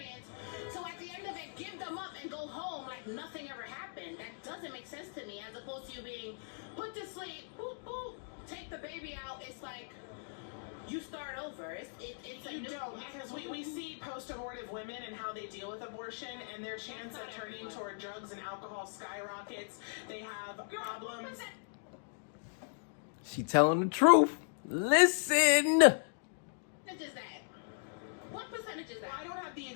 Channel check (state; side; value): silent; right; digital silence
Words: so at the end of it give them up and go home like nothing ever happened. That doesn't make sense to me, as opposed to you being put to sleep, boop, boop, take the baby out. It's like you start over. You don't, because we see post-abortive women and how they deal with abortion, and their chance of turning toward drugs and alcohol skyrockets. They have problems. She telling the truth. Listen. What percentage is that? What percentage is that? Well, I don't have the